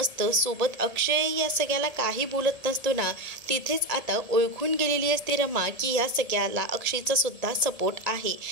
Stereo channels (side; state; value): left; late; 1.7 ms